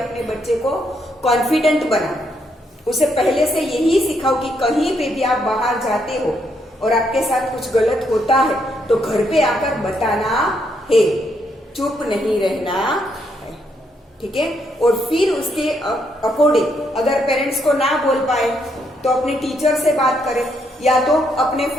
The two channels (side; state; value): both; normal; correlation 0.75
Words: बच्चे को confident बनाओ, उसे पहले से यही सिखाओ कि कहीं पे भी आप बाहर जाते हो और आपके साथ कुछ गलत होता है तो घर पे आकर बताना है, चुप नहीं रहना है, ठीक है। और फिर उसके अकॉर्डिंग अगर पेरेंट्स को ना बोल पाए तो अपने टीचर से बात करें या तो अपने